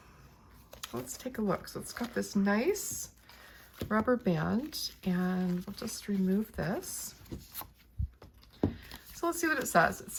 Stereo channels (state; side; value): identical; both; correlation 1.00